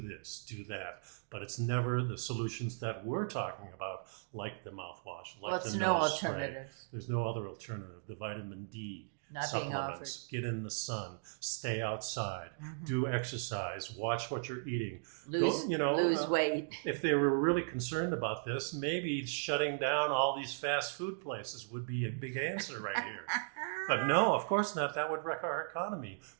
this, do that. But it's never the solutions that we're talking about, like the mouthwash, like the nose spray. Alternative. There's no other alternative. The vitamin D not being offered. Supplements, get in the sun, stay outside, do exercise, watch what you're eating. Lose weight. If they were really concerned about this, maybe shutting down all these fast food places would be a big answer right here. But no, of course not. That would wreck our economy.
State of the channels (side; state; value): left; silent; digital silence